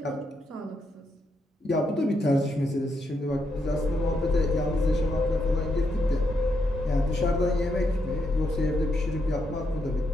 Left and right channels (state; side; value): normal; both; correlation 0.80